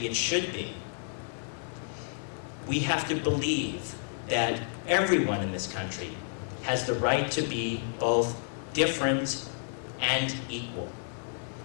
it should be, we have to believe that everyone in this country has the right to be both different and equal.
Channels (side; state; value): right; silent; digital silence